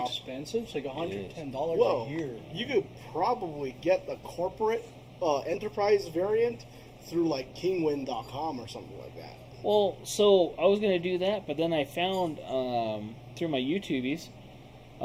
expensive. It's like $110 Whoa. a year. You could probably get the corporate enterprise variant through like kingwin.com or something like that. Well, so I was going to do that, but then I found through my YouTubies,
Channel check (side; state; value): both; identical; correlation 1.00